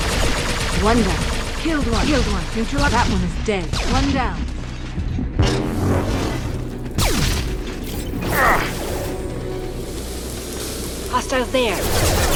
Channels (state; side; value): identical; both; correlation 1.00